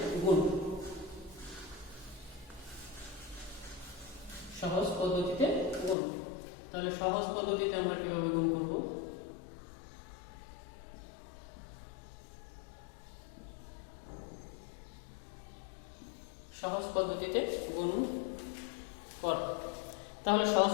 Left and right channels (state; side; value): drops out; right; at 6.0 s